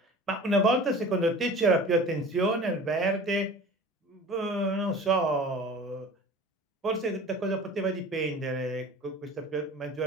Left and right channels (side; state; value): both; normal; correlation 0.41